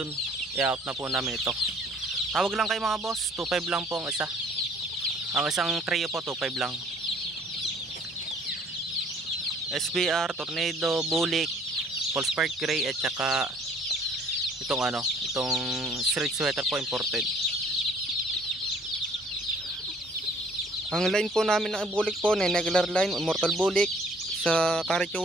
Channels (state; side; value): normal; both; correlation 0.58